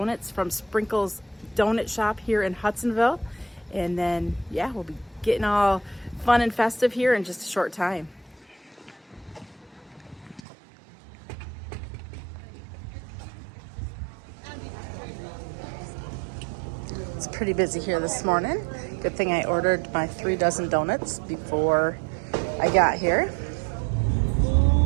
from Sprinkle's Donut Shop here in Hudsonville, and then we'll be getting all fun and festive here in just a short time. It's pretty busy here this morning. Good thing I ordered my 3 dozen donuts before I got here.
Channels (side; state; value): left; drops out; at 10.4 s